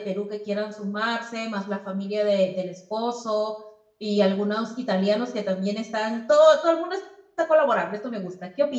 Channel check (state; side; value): identical; both; correlation 1.00